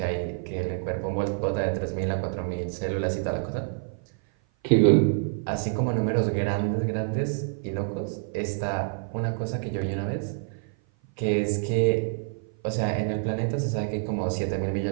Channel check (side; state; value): left; silent; 56 dB below the other